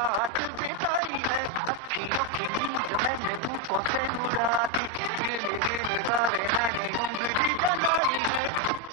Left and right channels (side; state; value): right; late; 8.6 ms